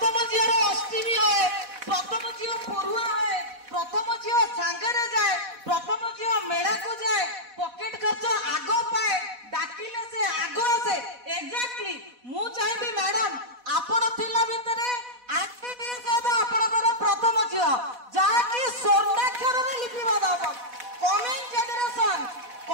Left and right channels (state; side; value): late; left; 4.1 ms